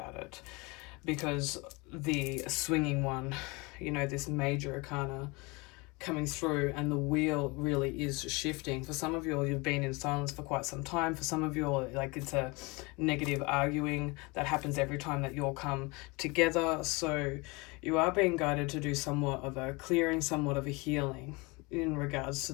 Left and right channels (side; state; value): right; quieter; 26.4 dB